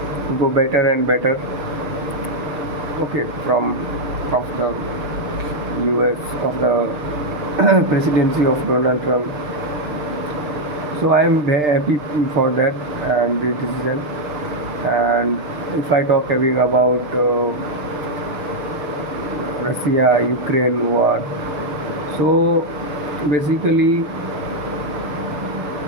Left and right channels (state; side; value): late; left; 6.6 ms